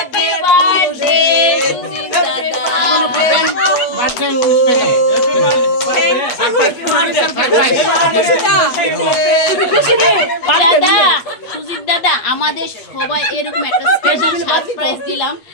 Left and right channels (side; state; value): right; late; 8.5 ms